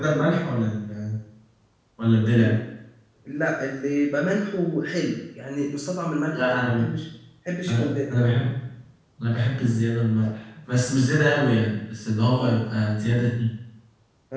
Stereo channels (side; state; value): both; identical; correlation 1.00